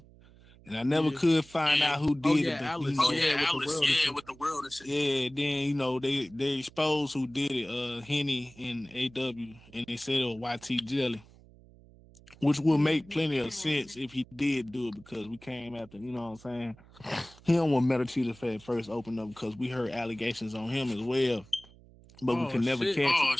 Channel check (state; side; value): noise; right; hum, 24 dB below the sound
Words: and I never could find out who did it. But Alice. With the world and shit. Yeah, then you know they exposed who did it. Henny and AW, and they said it was YT Jelly, which would make plenty of sense if he did do it because we came after, you know what I'm saying? He don't want Meta Cheetah first open up because we heard allegations on him as well, but we could never